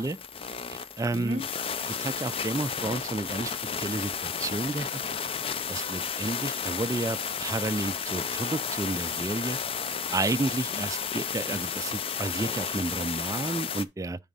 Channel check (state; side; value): normal; both; correlation 0.36